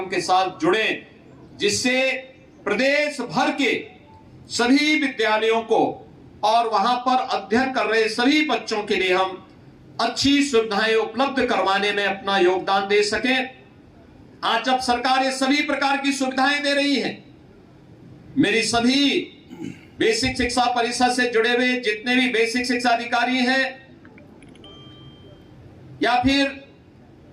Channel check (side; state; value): both; identical; correlation 1.00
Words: के साथ जुड़े, जिससे प्रदेश भर के सभी विद्यालयों को और वहां पर अध्ययन कर रहे सभी बच्चों के लिए हम अच्छी सुविधाएं उपलब्ध करवाने में अपना योगदान दे सकें। आज जब सरकार ये सभी प्रकार की सुविधाएं दे रही है, मेरी सभी बेसिक शिक्षा परिषद से जुड़े हुए जितने भी बेसिक शिक्षा अधिकारी हैं या फिर